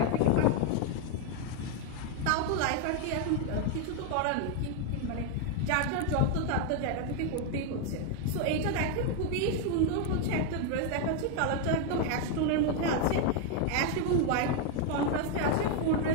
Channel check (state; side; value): different; both; correlation 0.01